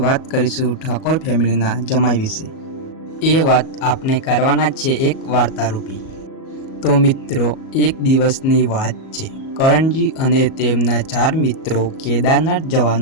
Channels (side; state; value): right; late; 37 ms